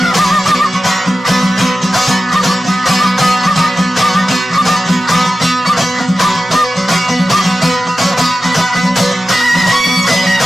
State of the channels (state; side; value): normal; both; correlation 0.93